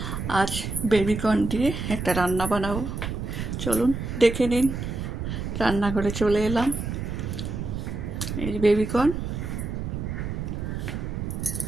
আজ বেবিকর্ন দিয়ে একটা রান্না বানাবো। চলুন দেখে নিন। রান্নাঘরে চলে এলাম। এই যে বেবিকর্ন,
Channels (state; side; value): noise; right; rumble, 4 dB below the sound